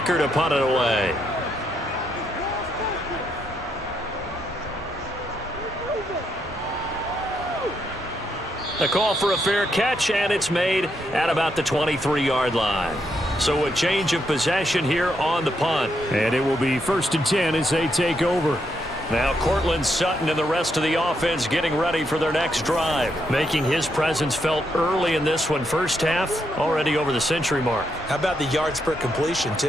to punt it away. A call for a fair catch, and it's made at about the 23-yard line. So a change of possession here on the punt. And it will be 1st and 10 as they take over. Now Cortland Sutton and the rest of the offense getting ready for their next drive. Making his presence felt early in this one. First half, already over the century mark. How about the yards per completion,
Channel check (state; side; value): normal; both; correlation 0.79